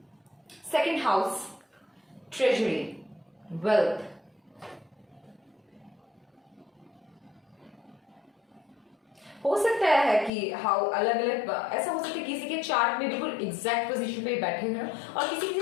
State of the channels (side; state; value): right; drops out; at 10.3 s